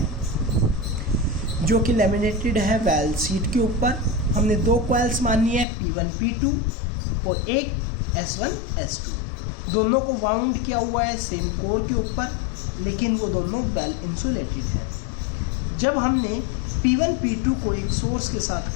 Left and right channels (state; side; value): drops out; right; at 5.7 s